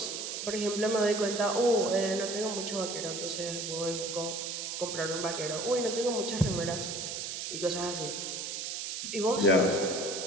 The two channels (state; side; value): noise; right; hiss, 4 dB below the sound